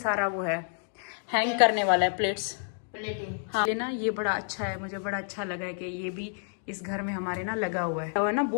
वो है हैंग करने वाला है प्लेट्स। हाँ ये ना ये बड़ा अच्छा है, मुझे बड़ा अच्छा लगा है कि ये भी इस घर में हमारे ना लगा हुआ है ना।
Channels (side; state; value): right; silent; digital silence